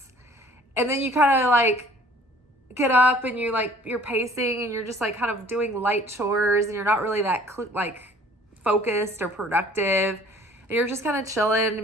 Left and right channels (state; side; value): normal; both; correlation 0.52